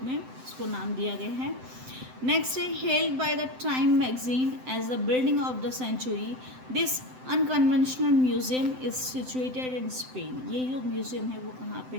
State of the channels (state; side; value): late; left; 7.8 ms